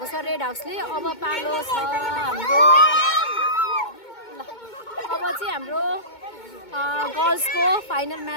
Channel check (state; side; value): late; right; 2.2 ms